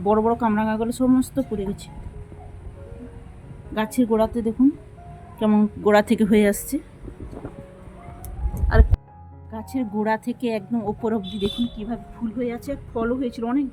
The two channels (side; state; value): both; identical; correlation 1.00